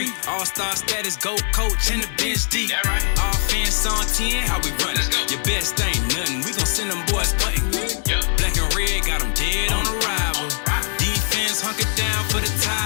All-star status, go coach and the bench deep. Right. Offense on 10, how we run it? Your best ain't nothing, we gon' send them boys punting. Yep. Black and red, got them dead on arrival. Defense hunker down for the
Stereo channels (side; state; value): right; silent; 61 dB below the other